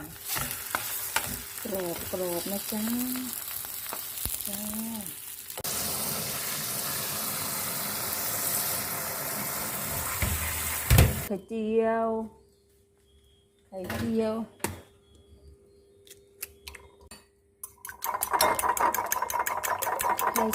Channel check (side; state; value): both; identical; correlation 1.00